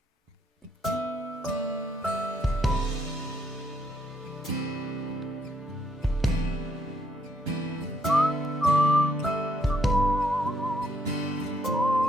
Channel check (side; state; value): both; normal; correlation 0.71